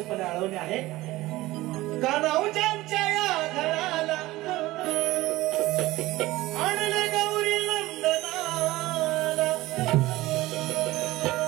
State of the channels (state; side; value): quieter; left; 18.2 dB